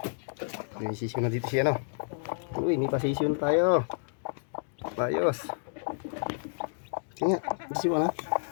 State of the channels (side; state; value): right; silent; digital silence